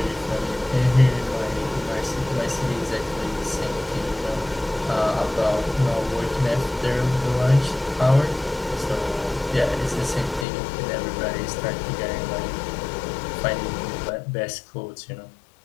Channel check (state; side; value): drops out; right; at 10.5 s